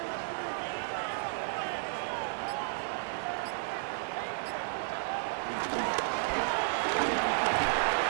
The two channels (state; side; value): silent; left; digital silence